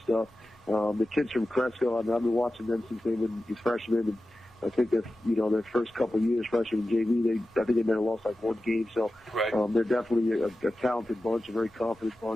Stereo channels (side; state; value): both; normal; correlation 0.93